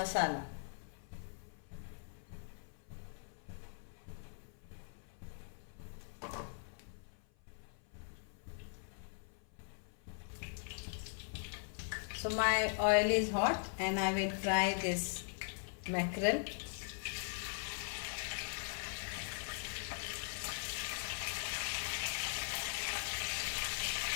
So my oil is hot, and I will fry this mackerel.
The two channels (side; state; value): right; silent; 51 dB below the other